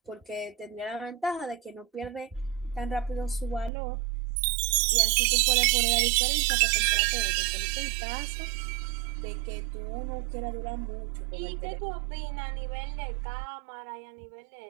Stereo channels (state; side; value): drops out; left; at 3.7 s